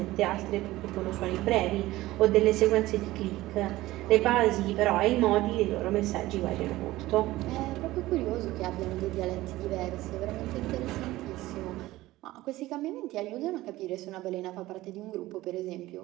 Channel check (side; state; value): left; quieter; 17.3 dB